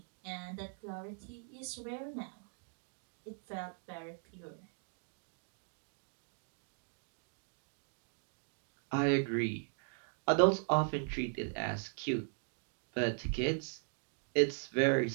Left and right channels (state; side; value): silent; left; 52 dB below the other